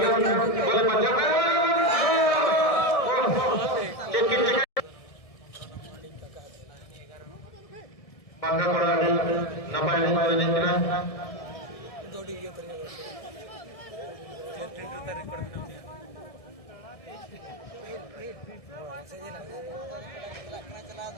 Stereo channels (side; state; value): right; late; 1.6 ms